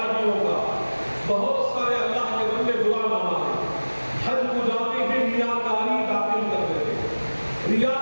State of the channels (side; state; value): both; inverted; correlation -1.00